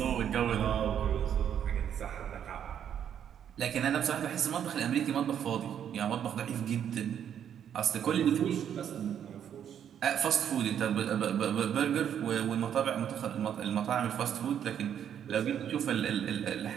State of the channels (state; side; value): quieter; left; 9.1 dB